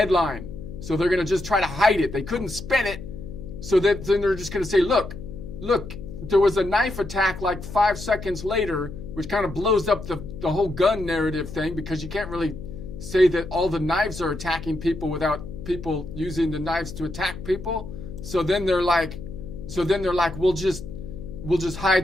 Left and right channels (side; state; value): left; noise; hum, 11 dB below the sound